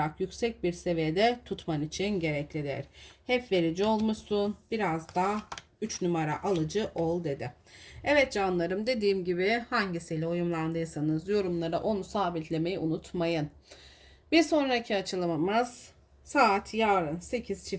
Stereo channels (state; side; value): identical; both; correlation 1.00